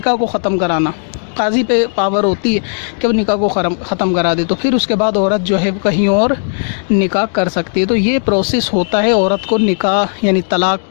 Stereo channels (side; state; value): right; silent; digital silence